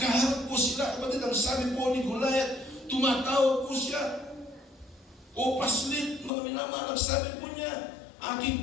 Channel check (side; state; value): right; drops out; at 6.3 s